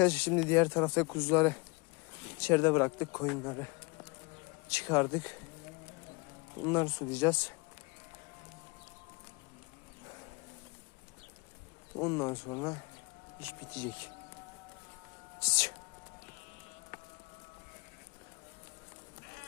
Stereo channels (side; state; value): right; quieter; 28.3 dB